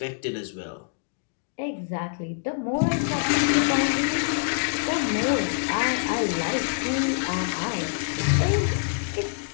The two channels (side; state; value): right; silent; digital silence